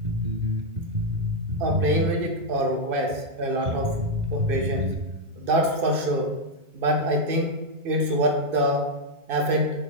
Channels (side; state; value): left; late; 2.6 ms